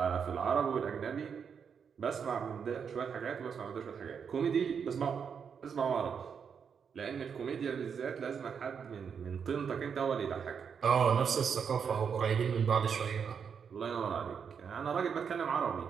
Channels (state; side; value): quieter; left; 6.8 dB